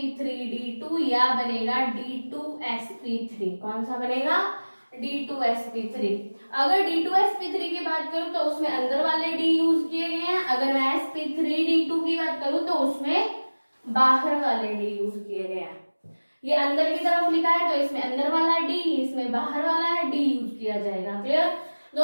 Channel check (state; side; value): inverted; both; correlation -1.00